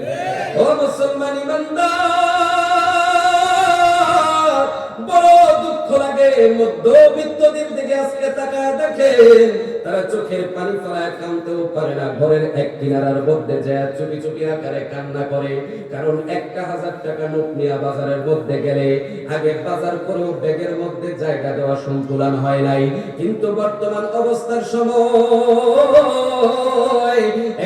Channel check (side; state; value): both; identical; correlation 1.00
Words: ও মুসলমান ইমানদার, বড় দুঃখ লাগে মধ্যবিত্তদের দিকে আজকে তাকায় দেখেন, তারা চোখের পানি ফেলায় কাঁদতেও পারে না, ঘরের এক কিনারার মধ্যে যায় চুপি চুপি আকারে কান্না করে। কারণ 1000 টাকা নোট নিয়ে বাজারের মধ্যে গেলে আগে বাজার করেও ব্যাগের মধ্যে জায়গা দেওয়া সন্তুলন হয় নাই, কিন্তু বর্তমান অবস্থার সময়